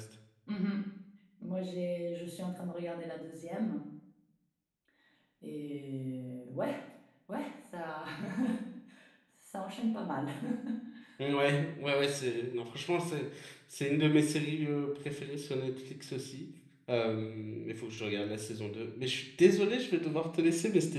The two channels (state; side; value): identical; both; correlation 1.00